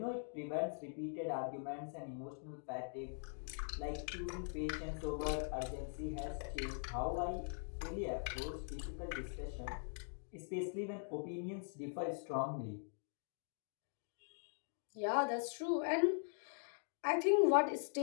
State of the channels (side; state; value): right; silent; digital silence